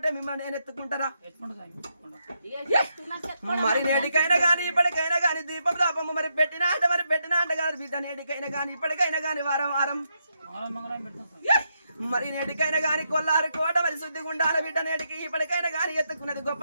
మిమ్మల్ని నేను ఎత్తుకుంటారా మరి నేటికైనా గాని ఇప్పటికైనా గాని దీపం దాపము మరి పెట్టినా అంటే కాదు బిడ్డ నేటికైనా గాని ఇప్పటికైనా గాని వారం మరి నేటికైనా గాని కొల్లారు కోట మరి శుద్ధిగా ఉండాలి బిడ్డ నేటికి ఇప్పటికైనా గాని ఎత్తుకున్నది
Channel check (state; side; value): inverted; both; correlation -0.80